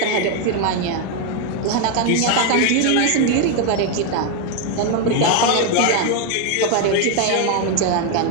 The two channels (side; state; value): both; different; correlation 0.01